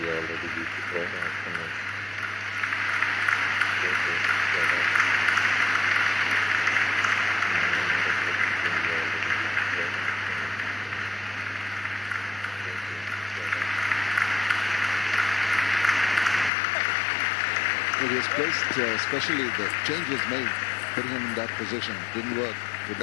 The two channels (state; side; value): drops out; right; at 16.5 s